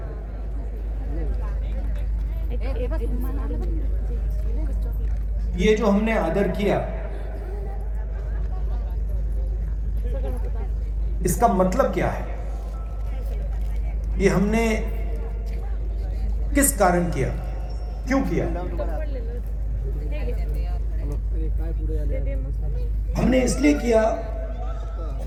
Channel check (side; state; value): both; identical; correlation 1.00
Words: ये जो हमने आदर किया, इसका मतलब क्या है? ये हमने किस कारण किया, क्यों किया? हमने इसलिए किया